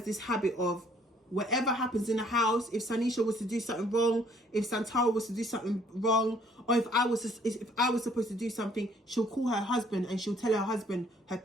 this habit of whatever happens in the house, if Sanisha was to do something wrong, if Santara was to do something wrong, or if I was supposed to do something, she'll call her husband and she'll tell her husband her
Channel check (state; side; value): normal; both; correlation 0.61